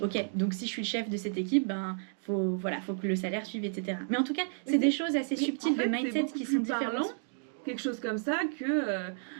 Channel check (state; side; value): silent; left; digital silence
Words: Ok, donc si je suis le chef de cette équipe, ben faut que le salaire suive, etc. Mais en tout cas, c'est des choses assez subtiles de mindset qui sont différentes. Quelque chose comme ça que